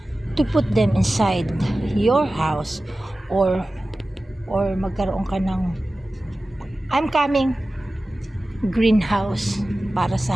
to put them inside your house or magkaroon ka ng greenhouse para sa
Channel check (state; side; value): normal; both; correlation 0.96